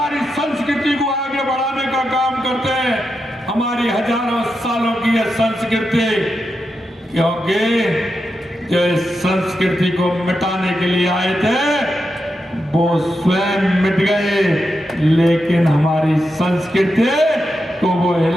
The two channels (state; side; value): normal; both; correlation 0.87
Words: संस्कृति को आगे बढ़ाने का काम करते हैं, हमारी हजारों सालों की यह संस्कृति, क्योंकि जो इस संस्कृति को मिटाने के लिए आए थे वो स्वयं मिट गए, लेकिन हमारी संस्कृति को वो